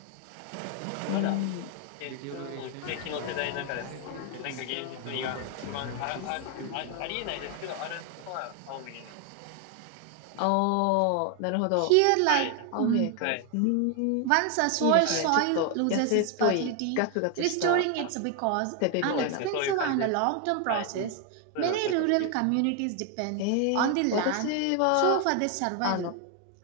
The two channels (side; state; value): both; different; correlation 0.01